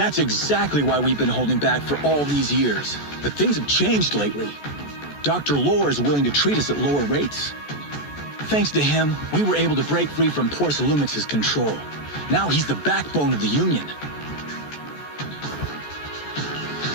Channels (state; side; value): late; right; 14 ms